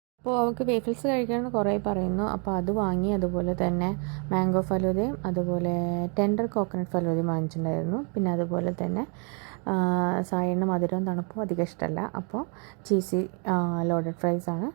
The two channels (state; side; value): quieter; left; 37.2 dB